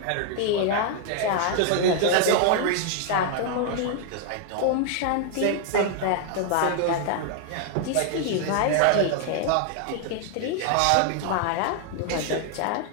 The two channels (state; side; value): different; both; correlation 0.00